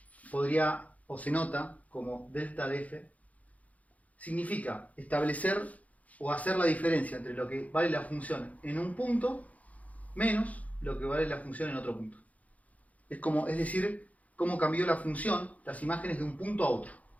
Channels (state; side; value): late; right; 0.071 ms